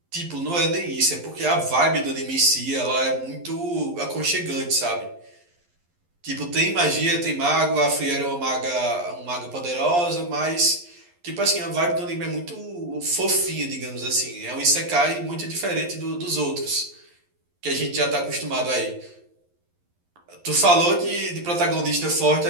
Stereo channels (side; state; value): left; late; 11 ms